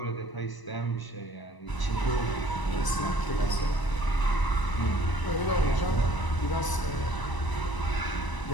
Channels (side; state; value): right; late; 1.0 ms